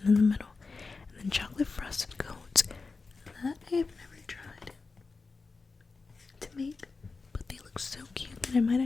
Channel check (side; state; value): right; quieter; 4.2 dB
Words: in the middle. And then chocolate frosted cones. That I have never tried to make, but they look so cute that I might